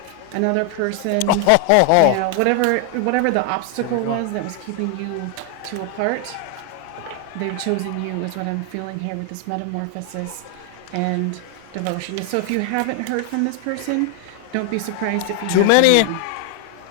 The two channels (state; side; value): different; both; correlation 0.00